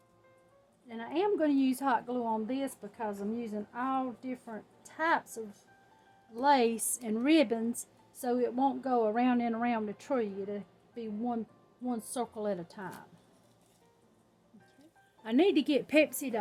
And I am going to use hot glue on this because I'm using all different types of lace and ribbons, so it won't go around and around the tree. It'll be one circle at a time. Okay. I need to get Pepsi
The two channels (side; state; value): both; identical; correlation 1.00